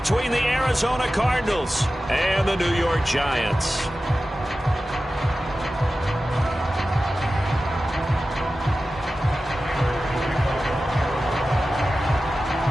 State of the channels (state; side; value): normal; both; correlation 0.94